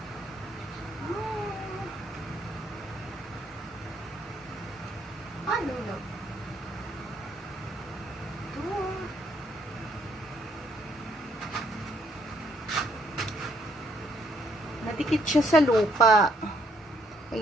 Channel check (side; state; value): both; normal; correlation 0.69